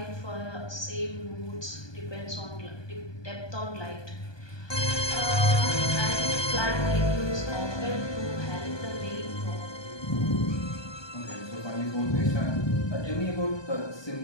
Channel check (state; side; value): late; right; 1.2 ms